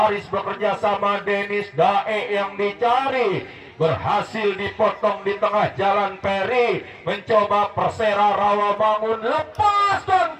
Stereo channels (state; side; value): identical; both; correlation 1.00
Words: bekerja sama Denis, Dae yang dicari, berhasil dipotong di tengah jalan. Peri mencoba. Persera Rawamangun lepaskan